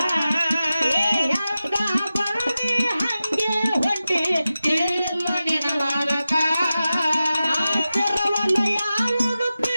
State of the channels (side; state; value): both; inverted; correlation -0.94